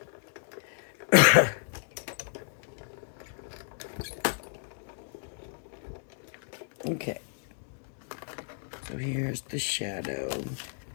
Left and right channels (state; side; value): silent; right; digital silence